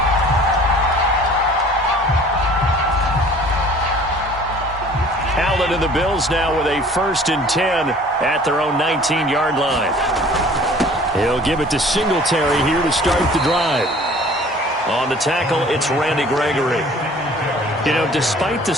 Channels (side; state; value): both; normal; correlation 0.50